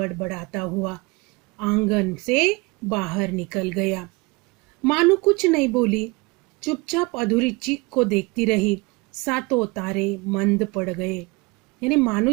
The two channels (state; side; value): quieter; left; 25.6 dB